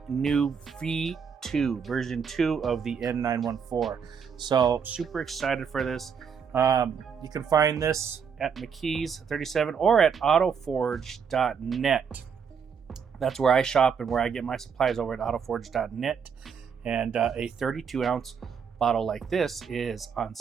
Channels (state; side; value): quieter; left; 6.7 dB